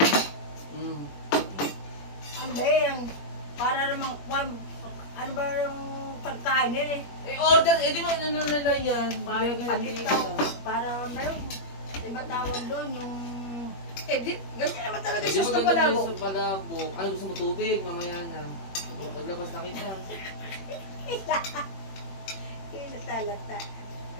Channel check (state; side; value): late; right; 21 ms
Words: Ano ba yan? Para namang ano ba yung pagkain eh? Order, di ba ano nila yan? Palitaw. Para meron. Diba tawag doon yung... Ganyan naman talaga Di sauce ba ng ganda palabok. sa palabok? Ano gusto mo tubig? Mamaya na. Maglabas na kita. Kilata-lata.